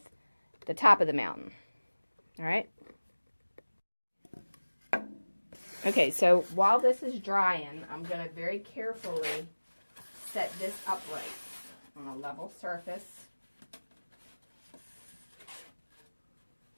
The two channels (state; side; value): inverted; both; correlation -1.00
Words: the top of the mountain. Alright? Okay, so while this is drying, I'm going to very carefully set this upright on a level surface.